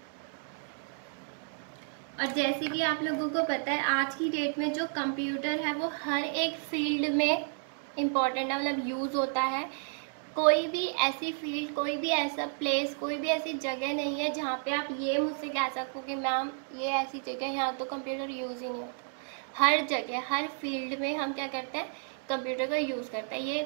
और जैसे कि आप लोगों को पता है आज की डेट में जो कंप्यूटर है वो हर एक फील्ड में इम्पॉर्टेंट है, मतलब यूज़ होता है। कोई भी ऐसी फील्ड, कोई भी ऐसा प्लेस, कोई भी ऐसी जगह नहीं है जहाँ पे आप ये मुझसे कह सको कि मैम ये ऐसी जगह यहाँ तो कंप्यूटर यूज़ ही नहीं होता। हर जगह, हर फील्ड में हम क्या करते हैं, कंप्यूटर का यूज़ करते हैं,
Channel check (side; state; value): left; silent; 57 dB below the other